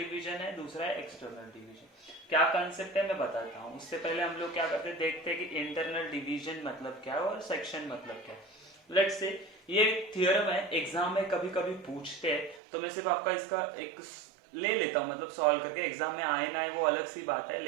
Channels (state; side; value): drops out; left; at 12.6 s